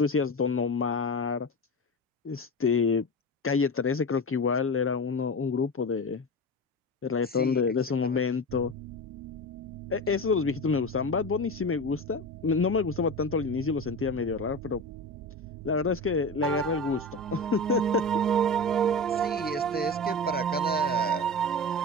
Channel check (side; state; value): both; normal; correlation 0.26